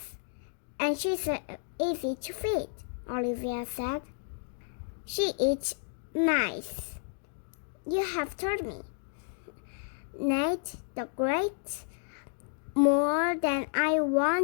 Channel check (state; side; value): silent; right; 57 dB below the other